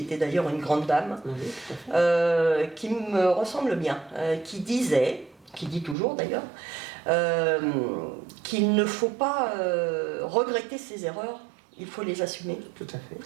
d'ailleurs une grande dame, qui me ressemble bien, qui dit toujours d'ailleurs, qu'il ne faut pas regretter ses erreurs, il faut les assumer. Tout à fait.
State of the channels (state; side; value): drops out; left; at 6.0 s